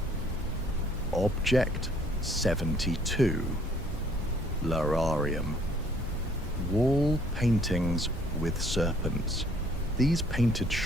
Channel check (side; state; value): both; normal; correlation 0.60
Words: Object 72, Lararium. Wall paintings with serpents. These painted